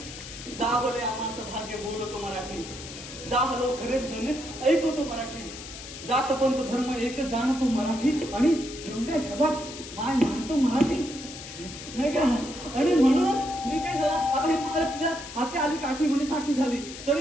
जा बोले आम्हाला भाग्य बोलतो मराठी. जा हलो खरेच धन्य ऐकवतो मराठी. जात पंत धर्म एक जाणतो मराठी आणि एवढ्या जगात माय मानतो मराठी नाही का? आणि म्हणून मी काय झालं आता हे मला तुझ्या हाती आली काठी म्हणजे साठी झाली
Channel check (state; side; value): noise; left; hiss, 12 dB below the sound